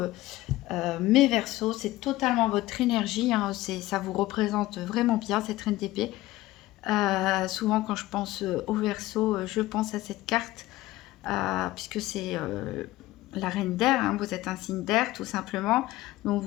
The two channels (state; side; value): quieter; right; 17.2 dB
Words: mes Verseaux, c'est totalement votre énergie. Hein, ça vous représente vraiment bien, cette Reine d'épée. Souvent, quand je pense aux Verseaux, je pense à cette carte, puisque c'est la reine d'air, hein, vous êtes un signe d'air tout simplement, donc